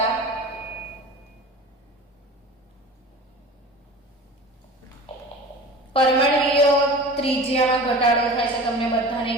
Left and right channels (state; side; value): normal; both; correlation 0.37